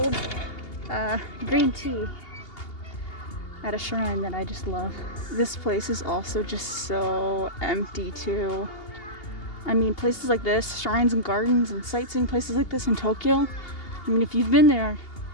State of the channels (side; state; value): right; late; 2.8 ms